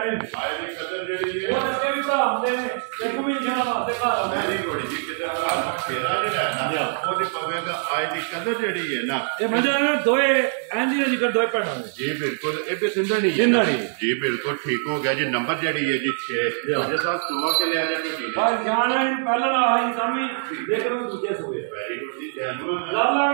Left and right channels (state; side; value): silent; left; digital silence